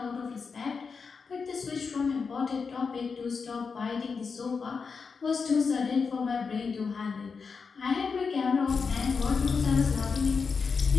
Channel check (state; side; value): quieter; right; 5.3 dB